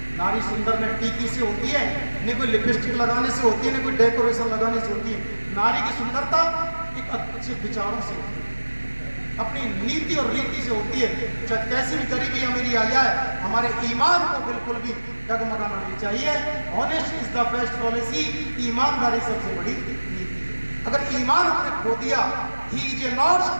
नारी सुंदर न टीकी से होती है, न कोई लिपस्टिक लगाने से होती है, न कोई डेकोरेशन लगाने से होती है। नारी की सुंदरता एक अच्छे विचारों से होती है, अपनी नीति और रीति से होती है। चाहे कैसी भी गरीबी अमीरी आ जाए, हमारे ईमान को बिल्कुल भी डगमगाना नहीं चाहिए। Honest is the best policy. ईमानदारी सबसे बड़ी नीति है। अगर ईमान हमने खो दिया, he is a not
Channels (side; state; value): both; inverted; correlation -1.00